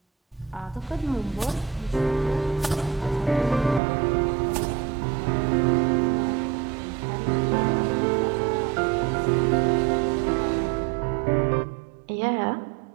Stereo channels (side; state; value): left; drops out; at 3.8 s